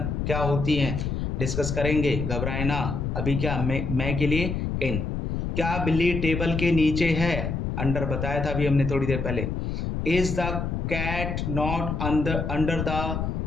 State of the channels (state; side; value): noise; left; rumble, 2 dB below the sound